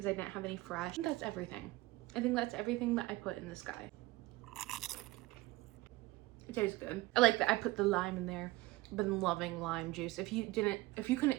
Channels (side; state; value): left; quieter; 19.7 dB